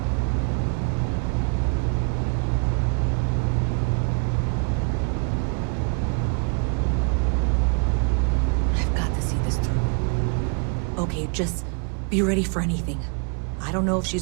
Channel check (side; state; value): left; quieter; 39.6 dB